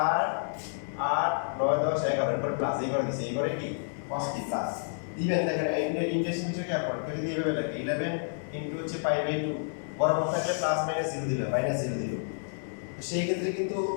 8 9 10 11 এর পর প্লাস এই করে দিছে এই করে কি cos কি প্লাস দিবেন দেখেন ইন্টারেস্টিং বিষয় কি আপনার কেউ যদি এভাবে লাগে 11 ইনটু হচ্ছে পাই বাই 2 বরাবর থাকলে প্লাস মাইনাস 0 দিলাম মাইনাস 0 দিলাম তো সেই ক্ষেত্রে কিন্তু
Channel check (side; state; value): right; silent; digital silence